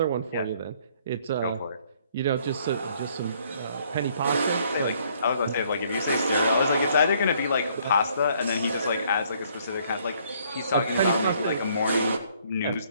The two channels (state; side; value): inverted; both; correlation -0.64